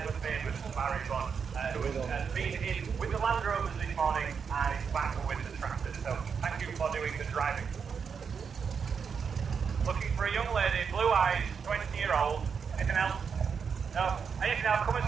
Barry Bond, who has been in with the Land Rovers this morning and is back with the tractors. So thank you for doing the driving. Looking for a young lady, blue eyes, 20-year-old. Anything else? No? Anything else? Come and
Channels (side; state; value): left; quieter; 6.3 dB